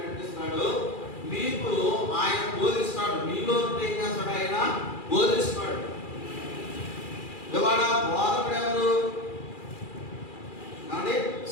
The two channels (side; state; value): right; late; 2.4 ms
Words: మీకు ఆయన బోధిస్తాడు. మీలో ఏం చేస్తాడు? ఆయన బోధిస్తాడు. ఇవాళ బోధకుడు ఎవరు అంటే